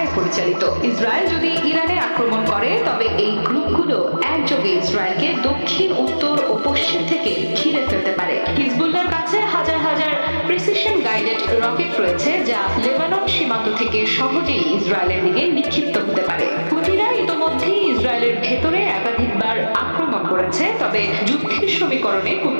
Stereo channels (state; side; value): inverted; both; correlation -1.00